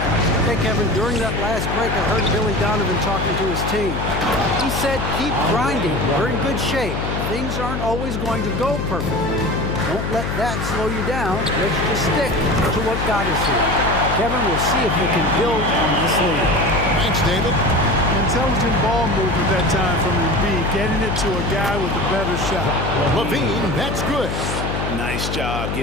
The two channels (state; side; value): noise; left; hum, 3 dB below the sound